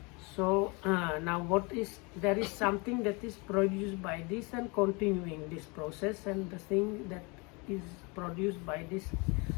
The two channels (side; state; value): right; quieter; 29.1 dB